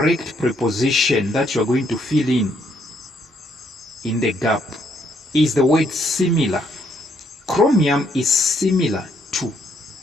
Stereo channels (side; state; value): both; normal; correlation 0.72